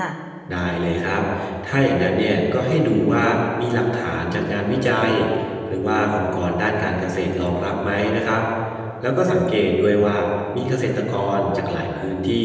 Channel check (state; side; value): identical; both; correlation 1.00